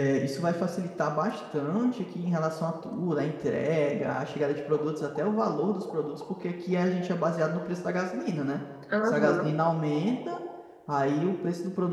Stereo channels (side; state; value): both; identical; correlation 1.00